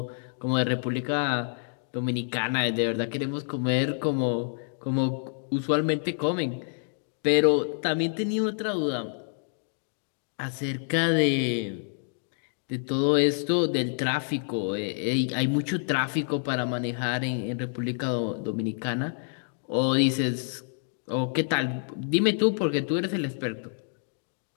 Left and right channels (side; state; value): right; silent; digital silence